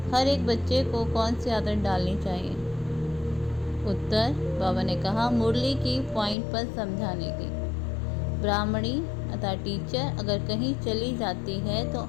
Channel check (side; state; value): right; drops out; at 6.4 s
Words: हर एक बच्चे को कौन सी आदत डालनी चाहिए? उत्तर, बाबा ने कहा, मुरली की पॉइंट पर समझाने की। ब्राह्मणी अर्थात टीचर अगर कहीं चली जाती है तो